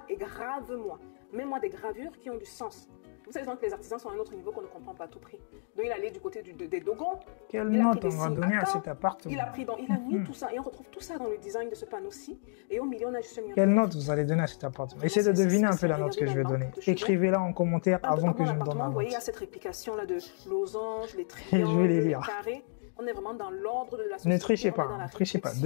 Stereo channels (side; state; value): right; silent; digital silence